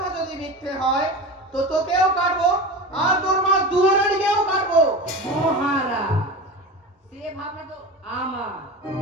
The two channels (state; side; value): normal; both; correlation 0.29